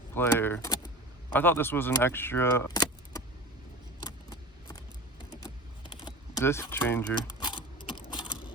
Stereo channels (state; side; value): normal; both; correlation 0.33